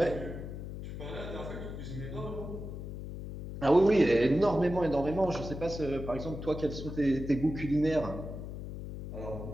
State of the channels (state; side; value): noise; left; hum, 8 dB below the sound